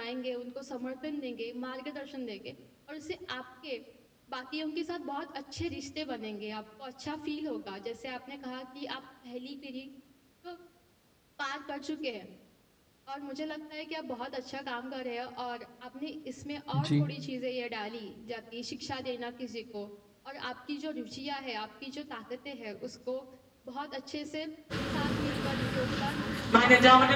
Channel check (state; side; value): identical; both; correlation 1.00